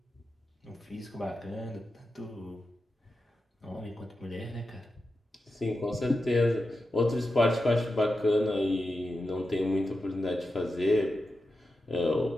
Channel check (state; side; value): normal; both; correlation 0.90